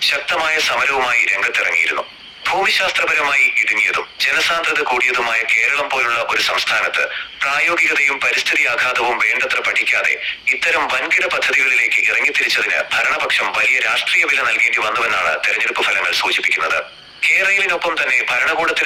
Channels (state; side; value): identical; both; correlation 1.00